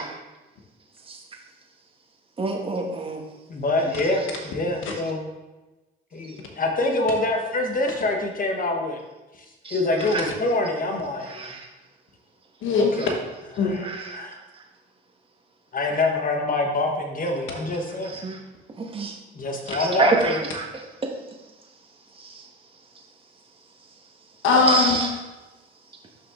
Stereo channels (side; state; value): both; normal; correlation 0.21